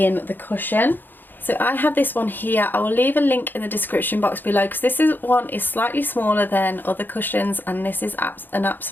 the cushion. So I have this one here. I will leave a link in the description box below because this one is slightly smaller than other cushions, and this is an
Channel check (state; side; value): late; right; 0.092 ms